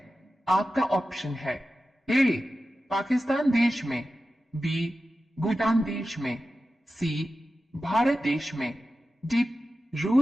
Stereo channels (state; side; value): normal; both; correlation 0.93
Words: आपका ऑप्शन है ए पाकिस्तान देश में, बी भूटान देश में, सी भारत देश में, डी